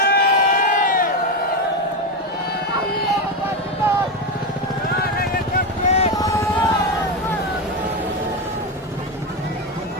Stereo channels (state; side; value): normal; both; correlation 0.12